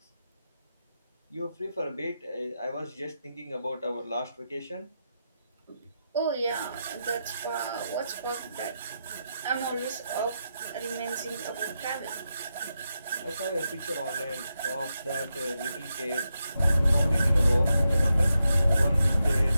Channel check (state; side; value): inverted; both; correlation -0.87